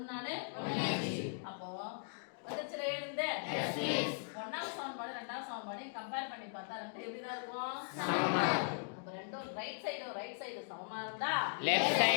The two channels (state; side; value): silent; right; digital silence